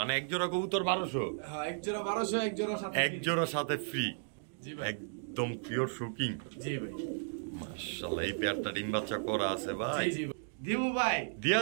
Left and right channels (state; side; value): silent; left; digital silence